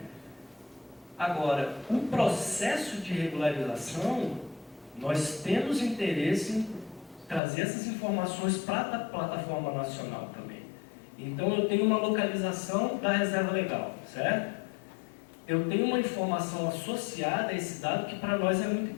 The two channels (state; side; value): drops out; right; at 7.4 s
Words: Agora, o processo de regularização, nós temos interesse em trazer essas informações para a plataforma nacional também. Então, eu tenho uma localização da reserva legal, certo? Eu tenho uma informação associada a esse dado que para nós é muito